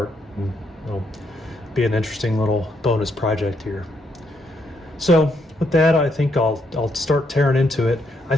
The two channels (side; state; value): both; normal; correlation 0.76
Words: And it'll be an interesting little bonus project here. So with that, I think I'll start tearing into it. I